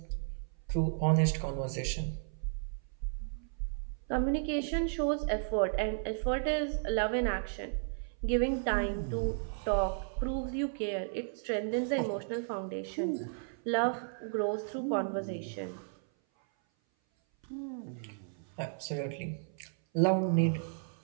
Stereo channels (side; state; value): left; silent; 55 dB below the other